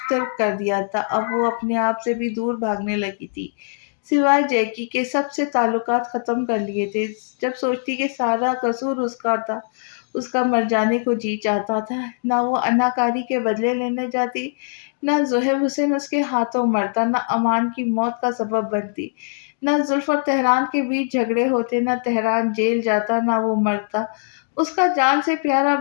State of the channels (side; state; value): right; silent; digital silence